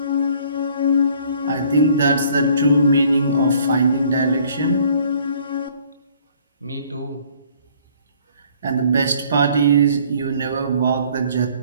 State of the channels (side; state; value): both; inverted; correlation -0.58